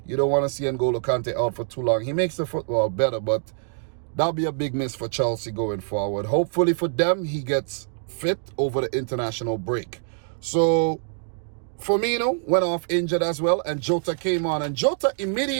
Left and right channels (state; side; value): silent; left; digital silence